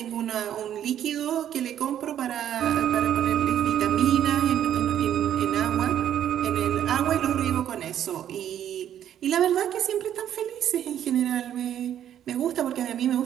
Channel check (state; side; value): quieter; left; 10.4 dB